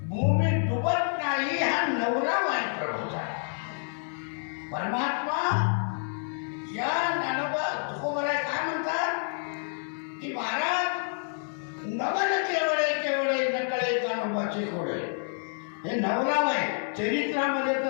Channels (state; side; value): silent; right; 59 dB below the other